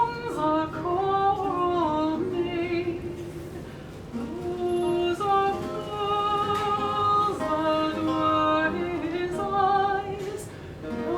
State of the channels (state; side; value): identical; both; correlation 1.00